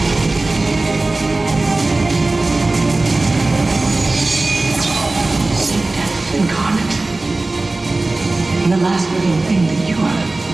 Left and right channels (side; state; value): left; quieter; 3.1 dB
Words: Incarnate. And the last living thing that you are